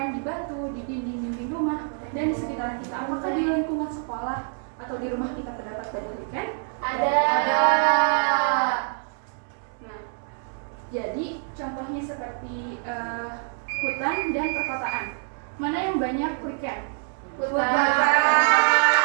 di batu, di dinding-dinding rumah, dan di sekitar kita. Apakah di lingkungan sekolah atau di rumah kita terdapat banyak lichen? Ada. Nah, jadi contohnya seperti hutan dan perkotaan. Mana yang banyak lichen? Hutan.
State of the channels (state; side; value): silent; left; 61 dB below the other